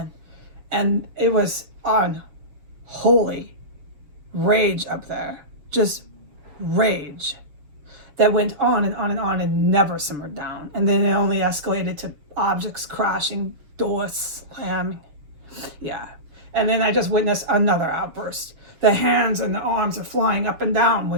And it was unholy rage up there. Just rage that went on and on and on and never simmered down. And then it only escalated to objects crashing, doors slamming. Yeah. And then I just witnessed another outburst. The hands and the arms are flying up and down when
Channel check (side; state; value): left; late; 6.8 ms